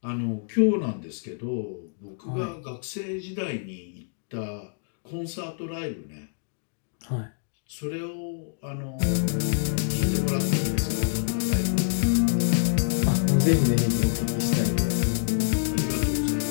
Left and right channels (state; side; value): silent; right; digital silence